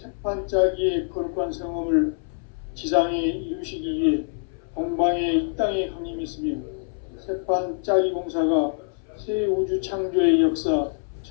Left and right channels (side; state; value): right; silent; 59 dB below the other